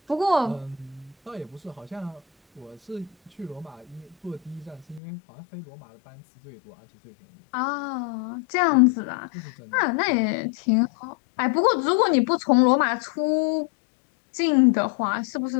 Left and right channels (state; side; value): drops out; right; at 5.0 s